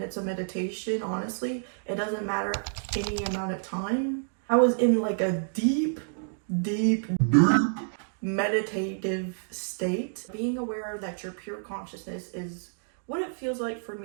of meditation, honestly. It doesn't matter any amount of time. I was in like a deep meditative state. Being aware that your pure consciousness is what it feels like for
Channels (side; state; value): left; silent; digital silence